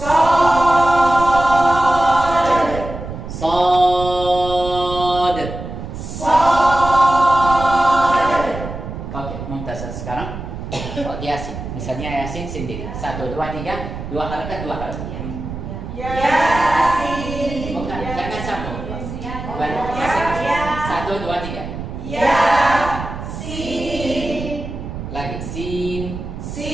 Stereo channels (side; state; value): right; noise; rumble, 8 dB below the sound